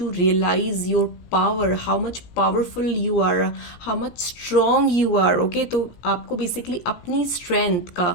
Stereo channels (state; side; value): late; right; 17 ms